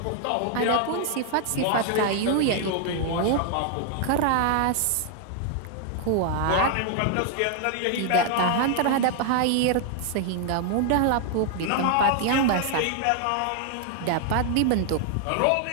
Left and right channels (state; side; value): different; both; correlation 0.00